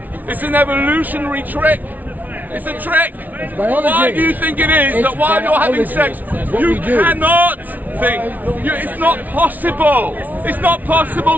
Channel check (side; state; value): left; late; 0.078 ms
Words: It's an evolutionary trick. It's a trick. Why do you think it is that while you're having sex, you cannot think? It's not possible. It's not